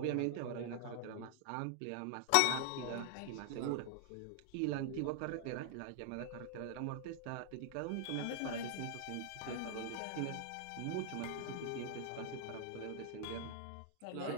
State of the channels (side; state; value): both; different; correlation 0.00